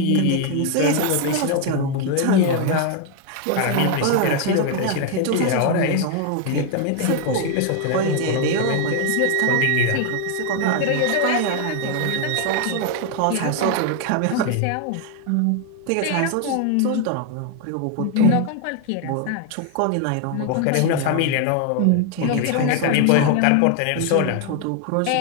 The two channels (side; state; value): both; different; correlation 0.01